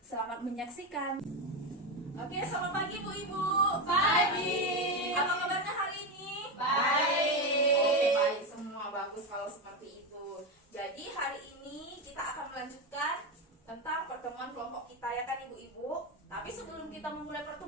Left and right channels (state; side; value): normal; both; correlation 0.13